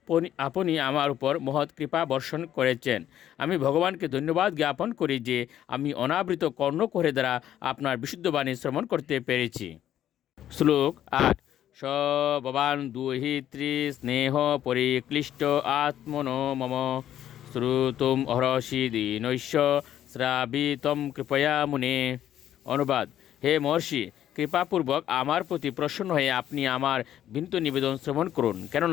আপনি আমার উপর মহৎ কৃপা বর্ষণ করেছেন। আমি ভগবানকে ধন্যবাদ জ্ঞাপন করি যে আমি অনাবৃত কর্ণকোহরে দ্বারা আপনার বিশুদ্ধ বাণী শ্রবণ করতে পেরেছি। শ্লোক 8। স ভবান দুহিত্রী স্নেহ পরিক্লিষ্ট আত্মনো মম শ্রুতুম অহরসি দীনৈশ্য শ্রাবিতম কৃপয়া মুনে। অনুবাদ: হে মহর্ষি, কৃপাপূর্বক আমার প্রতি প্রসন্ন হয়ে আপনি আমার বিনীত নিবেদন শ্রবণ করুন,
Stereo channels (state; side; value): quieter; right; 11.3 dB